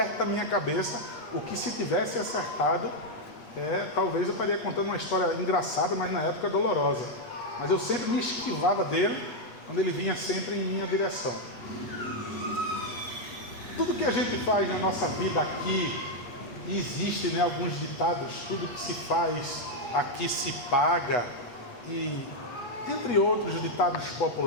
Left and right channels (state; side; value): late; right; 8.4 ms